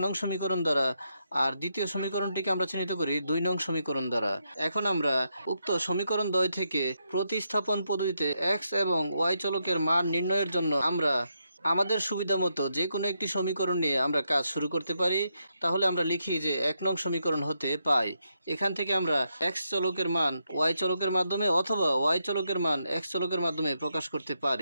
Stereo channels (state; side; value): inverted; both; correlation -0.81